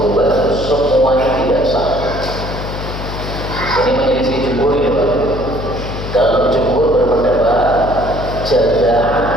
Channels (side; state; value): left; noise; hum, 7 dB below the sound